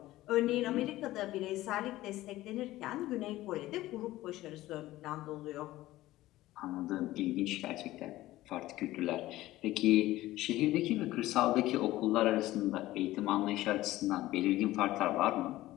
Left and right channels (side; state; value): right; quieter; 16.4 dB